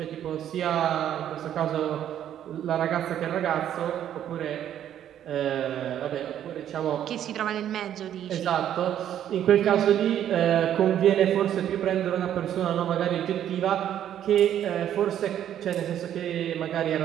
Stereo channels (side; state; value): left; quieter; 10.6 dB